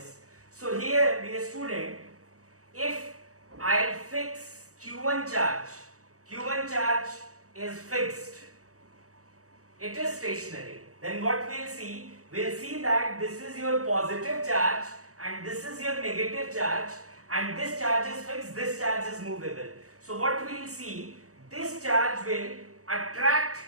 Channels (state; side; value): late; left; 0.65 ms